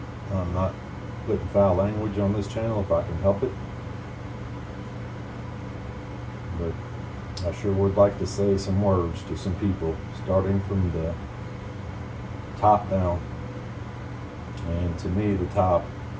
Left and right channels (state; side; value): identical; both; correlation 1.00